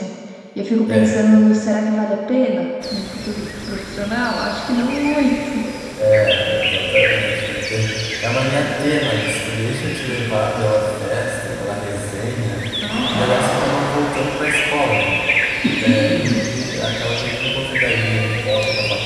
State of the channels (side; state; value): both; identical; correlation 1.00